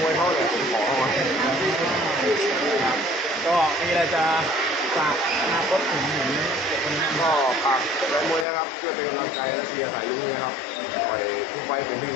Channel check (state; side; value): drops out; right; at 8.5 s